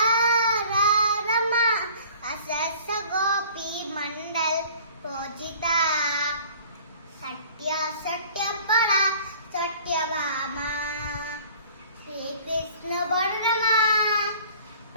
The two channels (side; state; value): both; inverted; correlation -0.49